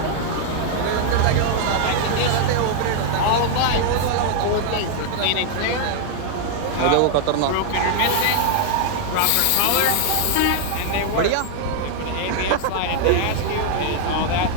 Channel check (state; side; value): different; both; correlation 0.00